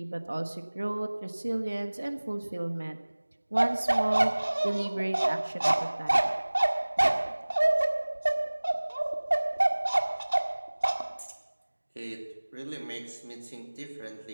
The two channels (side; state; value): both; inverted; correlation -1.00